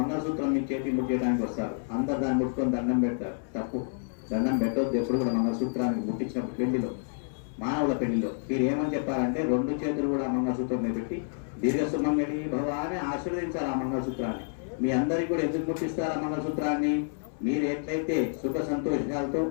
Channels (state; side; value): silent; right; 59 dB below the other